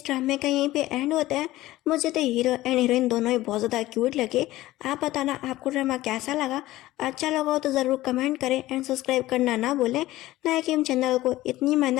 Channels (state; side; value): quieter; right; 16.7 dB